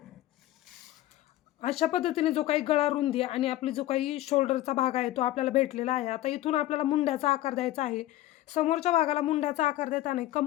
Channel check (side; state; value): right; quieter; 15.3 dB